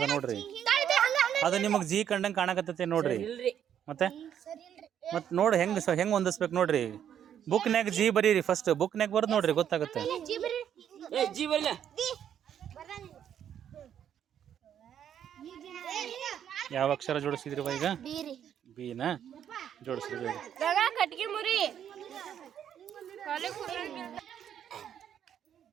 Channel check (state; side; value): quieter; left; 9.5 dB